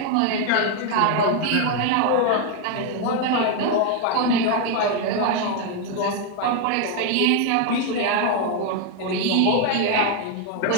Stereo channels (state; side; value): different; both; correlation 0.01